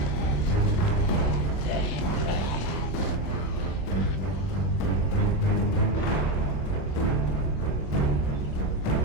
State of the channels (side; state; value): right; late; 24 ms